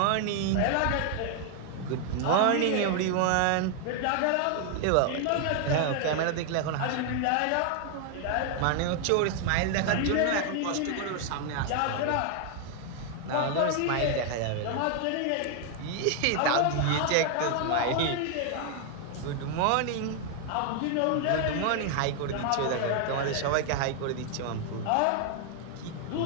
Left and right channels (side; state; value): both; different; correlation 0.00